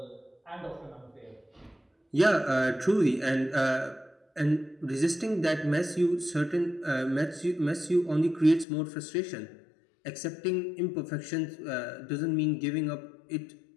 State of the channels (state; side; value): drops out; right; at 8.7 s